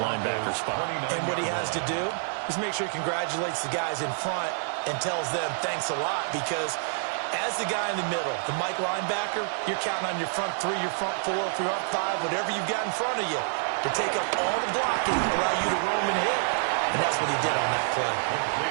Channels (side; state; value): left; silent; 60 dB below the other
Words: linebacker spot. And what he has to do is make sure he congratulates the guys in front and tells them thanks a lot, because as the guy in the middle, the Mike linebacker, you're counting on your front 3, your front 4, your front 5, whatever you've got in front of you to take up all the blocking, allow you to roam and hit. And that's what he did on that play.